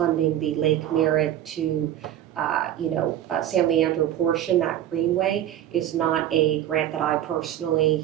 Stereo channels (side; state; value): left; quieter; 11.8 dB